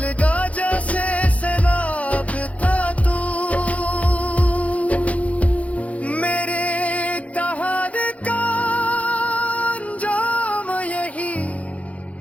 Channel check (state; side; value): late; right; 0.066 ms